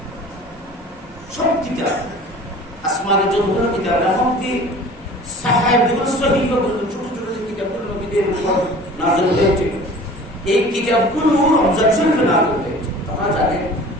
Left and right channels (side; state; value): both; normal; correlation 0.44